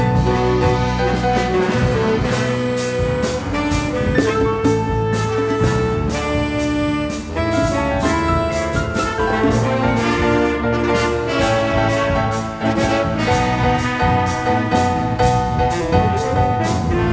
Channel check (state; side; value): identical; both; correlation 1.00